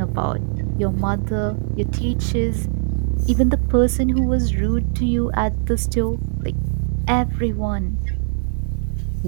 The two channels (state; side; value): silent; left; 59 dB below the other